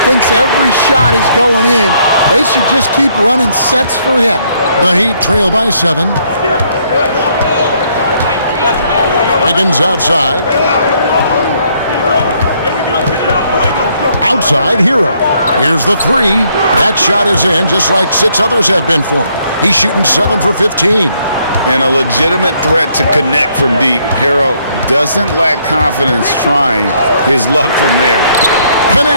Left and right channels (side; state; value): both; inverted; correlation -0.69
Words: Thinks every shot is going in. They should just keep running sets for him. The Heat trail by 7. Wiggins outside. Outside, Hero. Here's the 3. That shot is in, just like 6 others have been for him. He's shooting 7 for 15. And a legitimate threat to connect from deep. Hero doesn't lack confidence trying his luck from there.